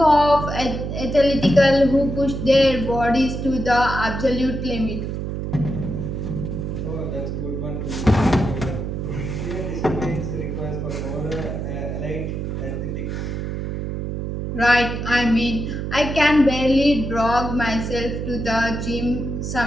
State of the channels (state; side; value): noise; right; hum, 4 dB below the sound